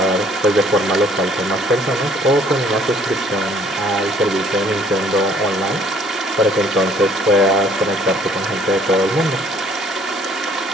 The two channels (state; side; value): normal; both; correlation 0.58